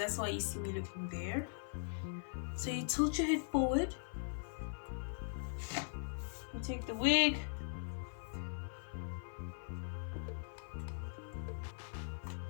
why you see me looking there. So you tilt your head forward, you take the wig,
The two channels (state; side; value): silent; right; 51 dB below the other